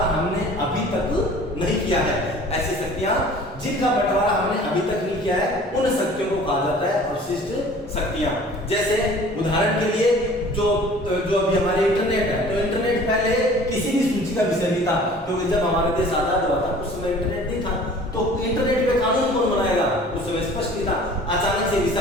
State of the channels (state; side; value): normal; both; correlation 0.47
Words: हमने अभी तक नहीं किया है। ऐसी शक्तियां जिनका बंटवारा हमने अभी तक नहीं किया है, उन शक्तियों को कहा जाता है अवशिष्ट शक्तियां। जैसे उदाहरण के लिए जो अभी हमारे इंटरनेट है, तो इंटरनेट पहले किसी भी सूची का विषय नहीं था, क्योंकि जब हमारा देश आजाद हुआ था उस समय इंटरनेट नहीं था, तो इंटरनेट पे कानून कौन बनाएगा? उस समय स्पष्ट नहीं था। अचानक से विषय